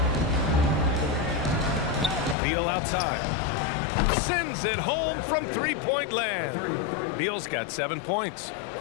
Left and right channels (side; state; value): right; drops out; at 2.4 s